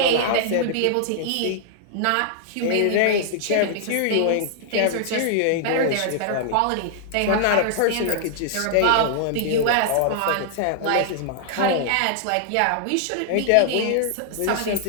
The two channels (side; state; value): both; different; correlation -0.01